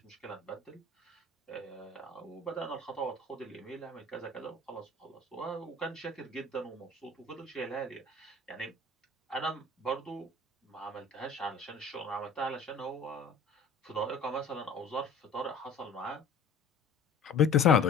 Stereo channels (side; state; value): right; quieter; 3.8 dB